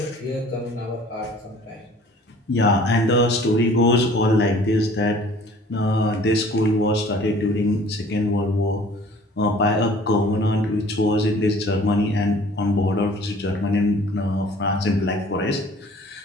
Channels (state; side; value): normal; both; correlation 0.51